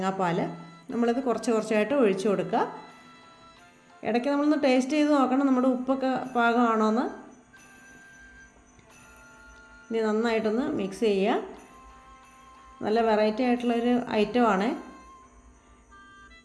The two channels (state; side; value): identical; both; correlation 1.00